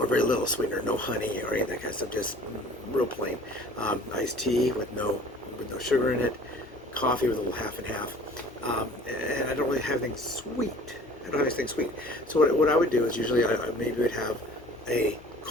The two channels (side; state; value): both; normal; correlation 0.47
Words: very little sweetener, no honey or any of that kind of stuff, just real plain. Iced tea with no sugar in it, coffee with a little half and half, and I don't really have anything sweet. I don't have anything sweet. So what I would do is usually I maybe would have a